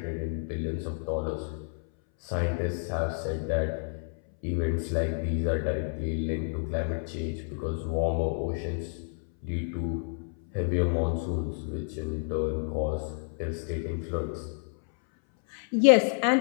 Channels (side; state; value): right; silent; 58 dB below the other